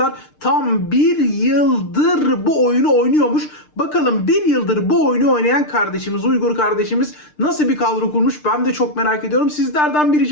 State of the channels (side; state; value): right; late; 6.6 ms